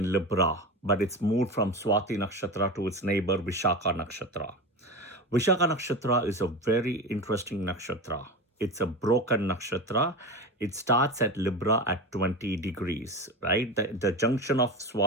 Libra, but it's moved from Swati Nakshatra to its neighbor Vishakha Nakshatra. Vishakha Nakshatra is a very interesting nakshatra. It's a broken nakshatra. It starts at Libra at 20 degrees, right? The junction of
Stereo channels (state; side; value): normal; both; correlation 0.25